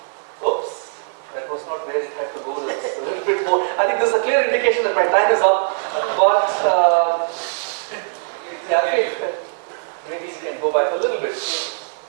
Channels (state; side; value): silent; left; digital silence